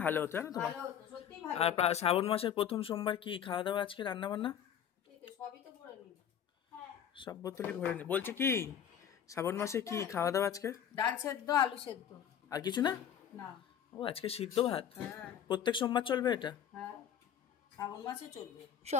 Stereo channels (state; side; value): quieter; right; 9.0 dB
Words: ভালো হতো, জানো তোমার। আর শ্রাবণ মাসের প্রথম সোমবার কি খাওয়া দাওয়া আজকে, রান্না বান্না? সব বোতলই ভরে নি। বলছি কি, শ্রাবণ মাসে কি খাওয়া দাওয়া আজকে? ডাল সেদ্ধ, আলু সেদ্ধ। আর কিছু না? না। ও, আজকে সিদ্ধ ভাত। প্রত্যেক সোমবার চলবে এটা? হ্যাঁ, শ্রাবণ মাসে চলবে।